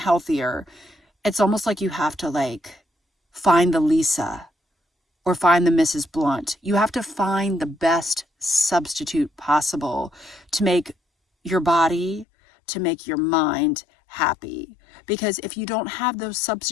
it's almost like you have to like find the Lisa or find the Mrs. Blunt. You have to find the best substitute possible to make your body, to make your mind happy. Because if you don't have those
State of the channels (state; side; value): drops out; right; at 12.2 s